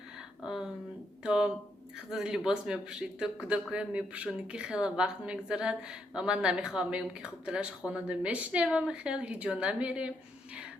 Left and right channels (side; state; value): both; normal; correlation 0.77